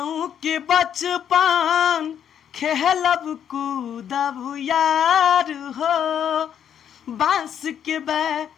के बचपन, खेलब कूदब यार हो, बांस के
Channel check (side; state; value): right; quieter; 9.0 dB